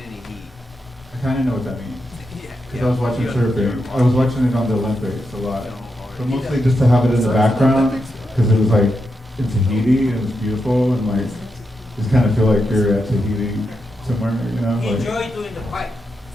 a heat. I kind of know what that means. Yeah. because I was watching surfing. I was watching it on the Olympics a lot, but mostly just to have it in the background because it was like in Tahiti and it was beautiful and like just kind of feel like you're at Tahiti somewhere, you know. He Like, enjoyed doing the pipe.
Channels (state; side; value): normal; both; correlation 0.86